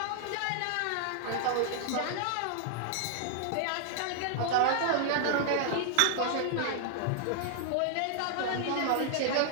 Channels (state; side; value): different; both; correlation 0.00